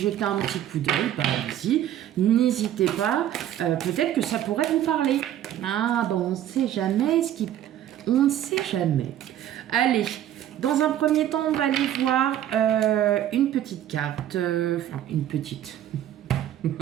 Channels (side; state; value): left; quieter; 11.7 dB